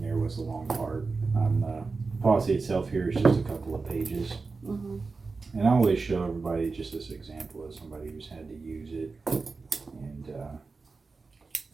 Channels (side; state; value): left; quieter; 4.2 dB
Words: there was the long part. The policy itself here is just a couple of pages. Mm-hmm. And I always show everybody just this example of somebody who's had to use it. And